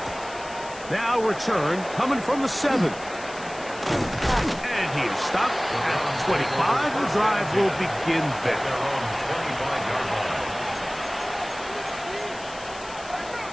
Now return coming from the 7. And he is stopped at the 25. The drive will begin there.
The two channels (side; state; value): left; noise; hiss, 17 dB below the sound